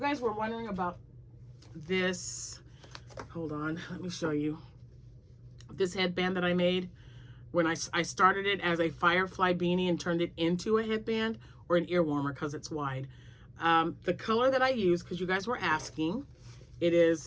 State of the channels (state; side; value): identical; both; correlation 1.00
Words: were wondering about this. Hold on, let me show you. This headband that I made when I started it as a firefly beanie and turned it into a headband, or an ear warmer because it's wide. The color that I use, because you guys were asking, it